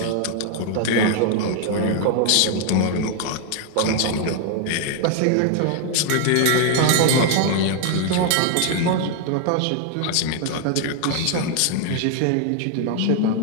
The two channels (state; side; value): different; both; correlation 0.00